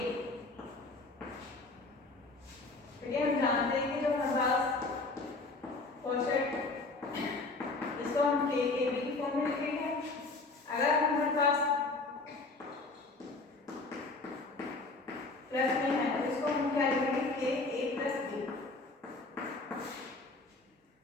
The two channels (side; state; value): right; quieter; 3.5 dB